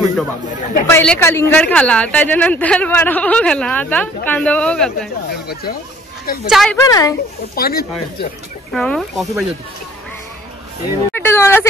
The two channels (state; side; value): normal; both; correlation 0.55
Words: पहिले कलिंगड खाला, त्याच्यानंतर वडापाव खाला, आता कांदा पाव खाताय. चाय पण आहे, पाणी कॉफी पाहिजे होती. तुम्हाला